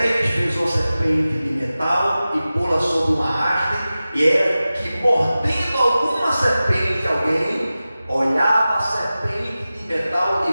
fez uma serpente de metal e pô-la sobre uma haste, e era que, mordendo alguma serpente, alguém olhava a serpente de metal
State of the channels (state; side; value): inverted; both; correlation -0.95